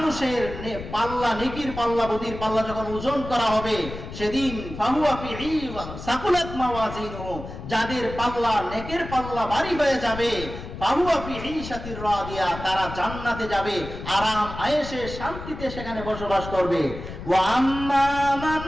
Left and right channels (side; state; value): left; noise; rumble, 10 dB below the sound